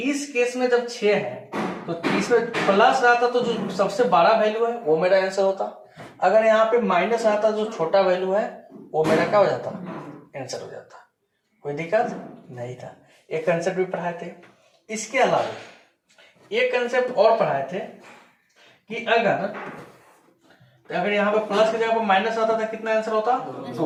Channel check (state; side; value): identical; both; correlation 1.00